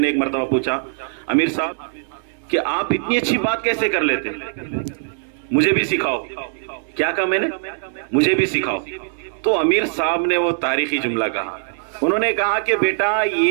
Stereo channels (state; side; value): silent; left; digital silence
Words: ایک مرتبہ پوچھا، امیر صاحب کہ آپ اتنی اچھی بات کیسے کر لیتے، مجھے بھی سکھاؤ. کیا کہا میں نے؟ مجھے بھی سکھاؤ. تو امیر صاحب نے وہ تاریخی جملہ کہا. انہوں نے کہا کہ بیٹا